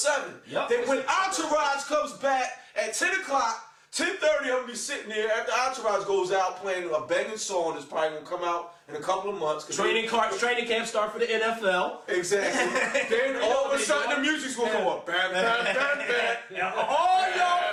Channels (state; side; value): identical; both; correlation 1.00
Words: Yep. That when Entourage comes back at 10 o'clock. 10:30, I'm gonna be sitting there after Entourage goes out playing a banging song that's probably gonna come out in a couple of months. Training camp start for the NFL. Exactly. Then all of a sudden the music's gonna go up. Bam, bam, bam, bam. All